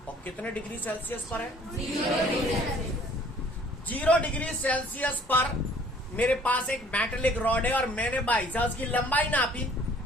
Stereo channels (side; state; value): both; normal; correlation 0.56